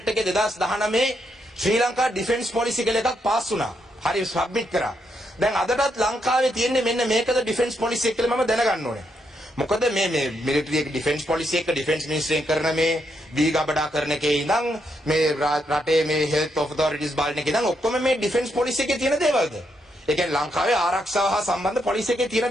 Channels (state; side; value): normal; both; correlation 0.79